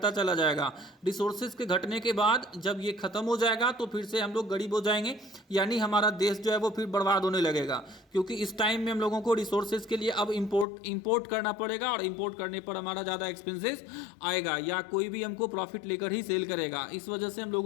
चला जाएगा। रिसोर्सेज के घटने के बाद जब ये खत्म हो जाएगा तो फिर से हम लोग गरीब हो जाएंगे, यानी हमारा देश जो है वो फिर बर्बाद होने लगेगा, क्योंकि इस टाइम में हम लोगों को रिसोर्सेज के लिए अब इम्पोर्ट करना पड़ेगा और इम्पोर्ट करने पर हमारा ज़्यादा एक्सपेंसेस आएगा या कोई भी हमको प्रॉफिट लेकर ही सेल करेगा। इस वजह से हम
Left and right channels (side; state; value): right; drops out; at 10.7 s